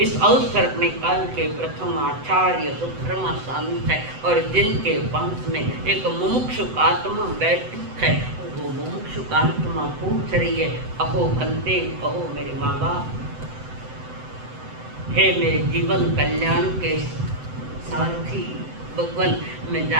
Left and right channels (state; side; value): late; left; 7.9 ms